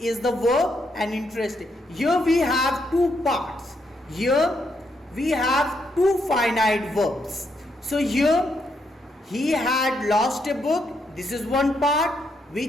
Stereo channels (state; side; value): normal; both; correlation 0.78